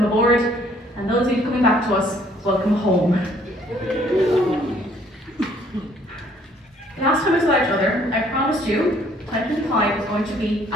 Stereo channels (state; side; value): normal; both; correlation 0.62